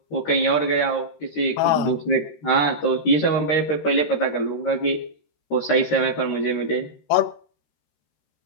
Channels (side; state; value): right; late; 13 ms